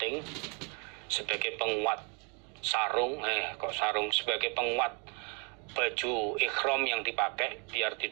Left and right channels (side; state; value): left; quieter; 34.5 dB